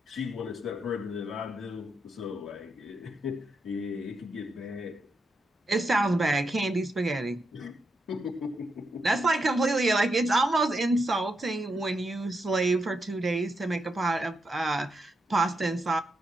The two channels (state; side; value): normal; both; correlation 0.83